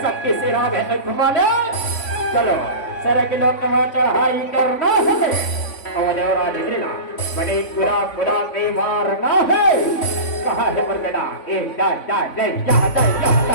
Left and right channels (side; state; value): right; late; 3.5 ms